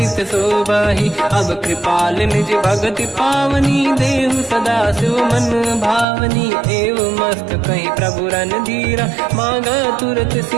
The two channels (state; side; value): drops out; left; at 6.1 s